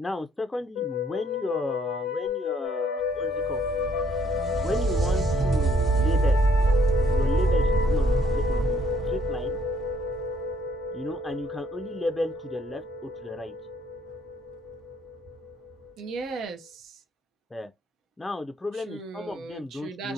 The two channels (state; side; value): normal; both; correlation 0.66